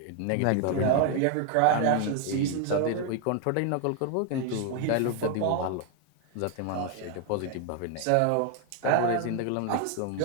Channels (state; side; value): different; both; correlation 0.00